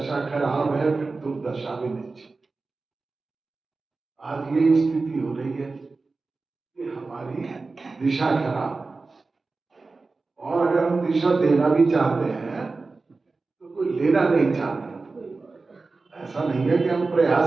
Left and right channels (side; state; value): left; quieter; 3.8 dB